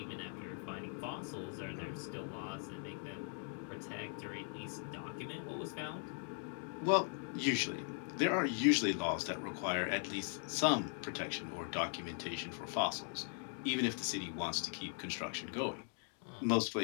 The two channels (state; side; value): silent; right; 51 dB below the other